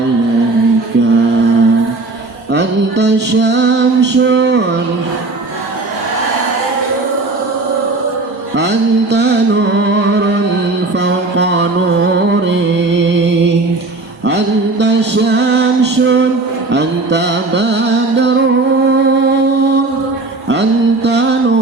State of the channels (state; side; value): quieter; left; 3.3 dB